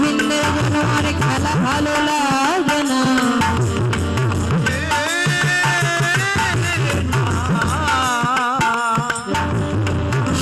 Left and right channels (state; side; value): identical; both; correlation 1.00